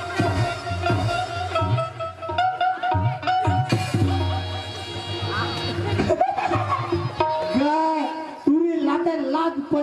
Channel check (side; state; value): both; identical; correlation 1.00